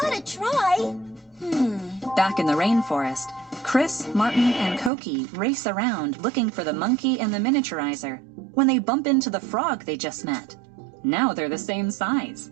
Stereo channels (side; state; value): left; drops out; at 4.9 s